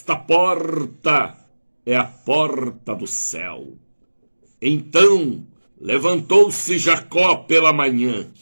porta é a porta do céu. Então levantou-se Jacó pela manhã,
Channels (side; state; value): both; inverted; correlation -1.00